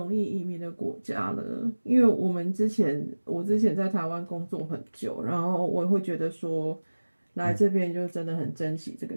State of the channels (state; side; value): inverted; both; correlation -1.00